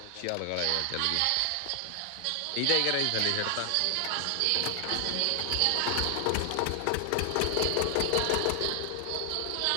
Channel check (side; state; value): both; different; correlation 0.00